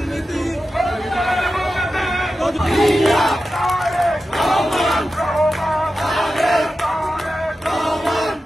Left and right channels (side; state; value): both; normal; correlation 0.92